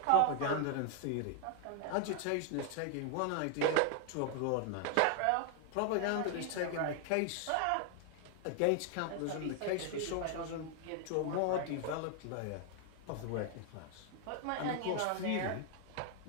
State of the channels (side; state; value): both; different; correlation 0.00